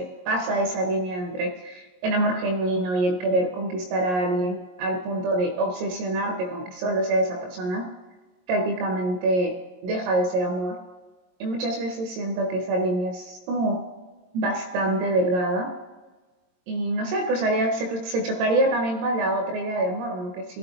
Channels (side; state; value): left; late; 22 ms